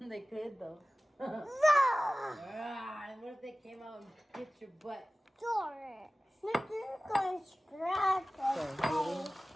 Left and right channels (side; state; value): both; normal; correlation 0.97